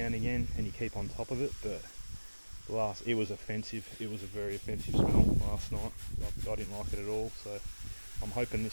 and again, and you keep on top of it, but it was offensive. It was a very offensive smell last night. I didn't like it at all, so I'm hoping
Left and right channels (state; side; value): inverted; both; correlation -1.00